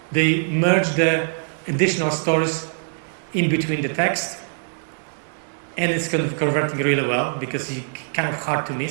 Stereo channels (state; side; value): silent; left; digital silence